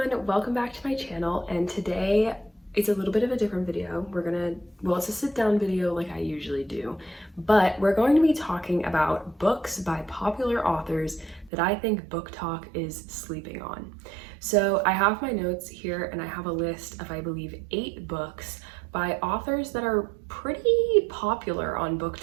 welcome back to my channel, and today it's a little bit of a different video. It's a sit down video like I usually do, but we're going to be talking about books by popular authors that I think Booktok is sleeping on. So I have my notes here and I have a list of, I believe, 8 books by authors that are pretty popular on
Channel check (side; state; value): left; drops out; at 11.5 s